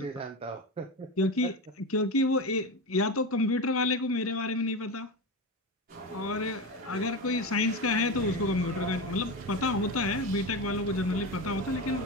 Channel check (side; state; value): both; normal; correlation 0.20